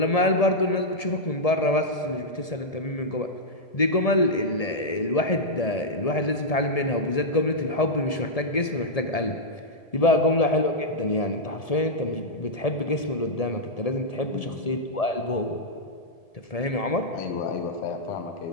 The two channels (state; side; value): late; right; 1.7 ms